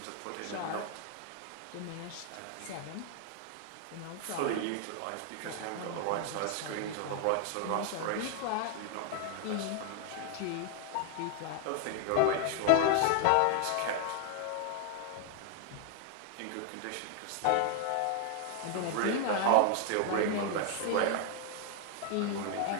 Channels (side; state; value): both; different; correlation 0.00